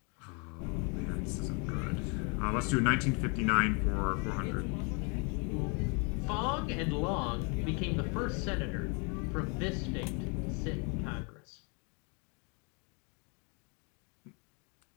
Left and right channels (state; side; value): quieter; right; 34.6 dB